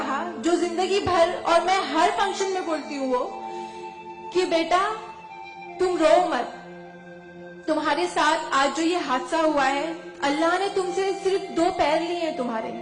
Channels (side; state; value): both; identical; correlation 1.00